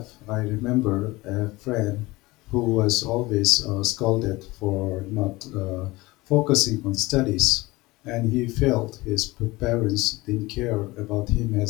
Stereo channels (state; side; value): quieter; right; 21.1 dB